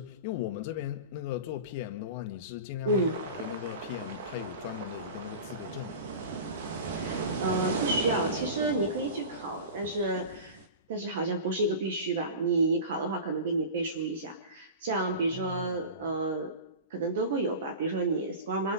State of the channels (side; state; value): both; inverted; correlation -0.32